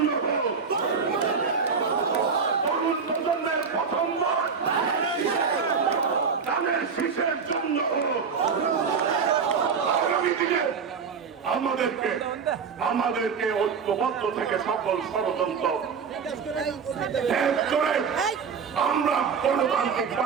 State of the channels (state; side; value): quieter; left; 5.9 dB